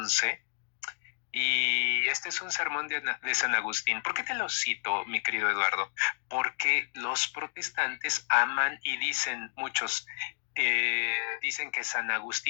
Y este es un sermón de San Agustín. ¿Por qué te lo cito, mi querido Eduardo? Porque los protestantes aman y dicen, muchos dicen que San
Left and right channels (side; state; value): right; silent; digital silence